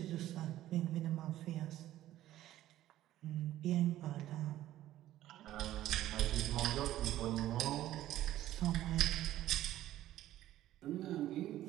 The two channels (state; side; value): quieter; left; 13.8 dB